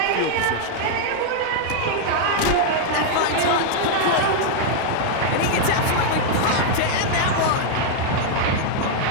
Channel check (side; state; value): both; different; correlation -0.01